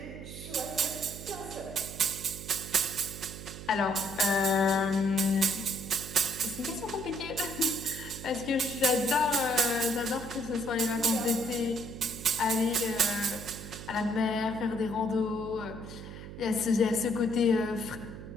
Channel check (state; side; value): noise; right; hum, 12 dB below the sound